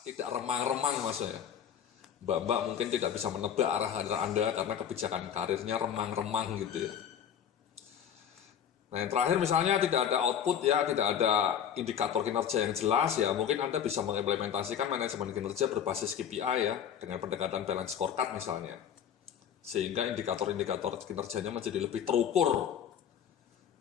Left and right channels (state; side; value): quieter; right; 8.7 dB